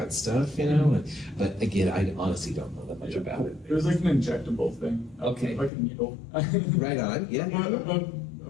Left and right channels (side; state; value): right; drops out; at 5.7 s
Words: stuff, you know? But again, I honestly don't know that much about it. It was like an injectable thing. Okay. Like a needle. Right on, yeah.